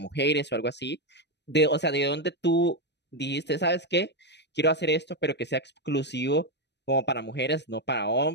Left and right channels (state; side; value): late; right; 0.50 ms